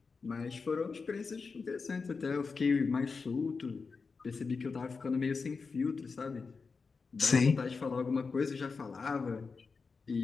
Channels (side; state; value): right; quieter; 4.8 dB